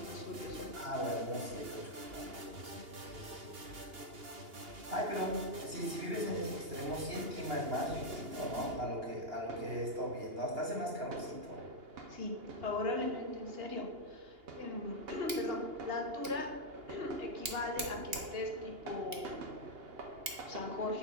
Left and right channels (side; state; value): left; late; 2.8 ms